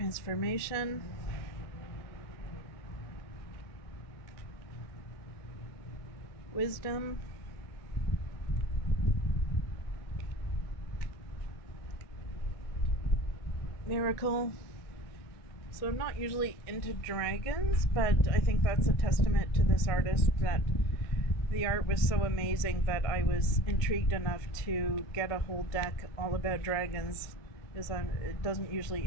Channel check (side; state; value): right; late; 2.2 ms